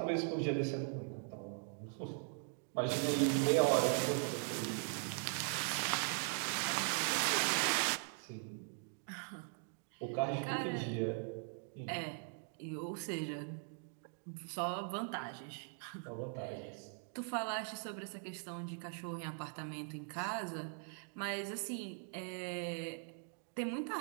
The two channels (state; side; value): silent; left; 51 dB below the other